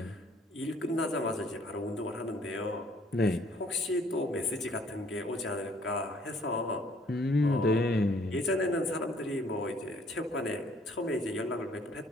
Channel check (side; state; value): both; normal; correlation 0.61